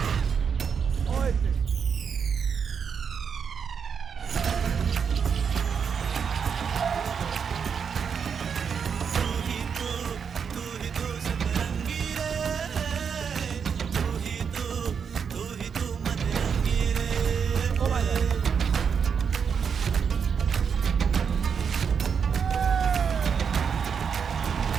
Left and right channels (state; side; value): quieter; left; 6.7 dB